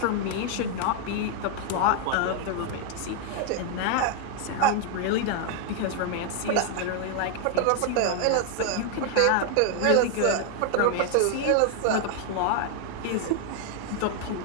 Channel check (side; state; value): both; different; correlation 0.00